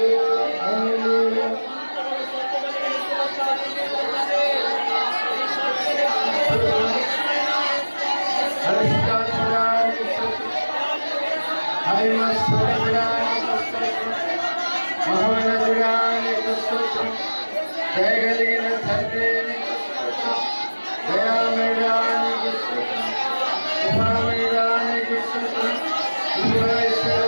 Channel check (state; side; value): inverted; both; correlation -1.00